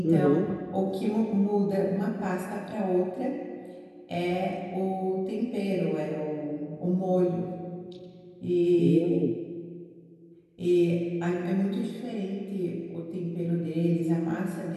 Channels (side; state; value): both; identical; correlation 1.00